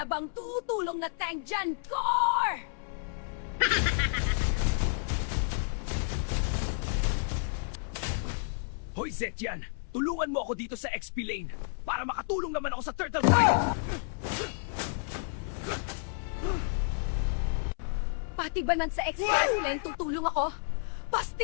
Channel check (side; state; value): right; silent; 57 dB below the other